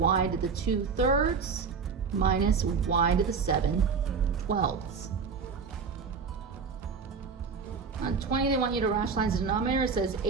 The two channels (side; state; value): left; quieter; 5.4 dB